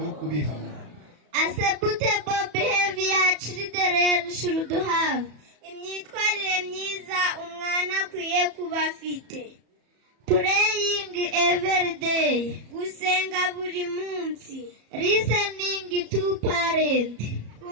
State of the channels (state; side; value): late; left; 34 ms